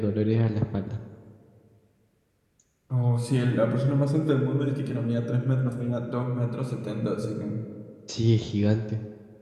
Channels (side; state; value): both; identical; correlation 1.00